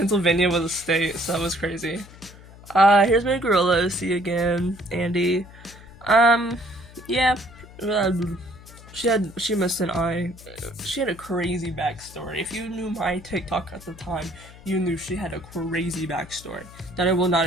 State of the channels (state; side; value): noise; left; hum, 20 dB below the sound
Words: was a state, so that was crazy. Here's my gorilla. See you again, Andy. Yeah. She missed an eye. She had a crazy backstory. If you knew my TikTok at the time, you knew she had a crazy backstory that I will not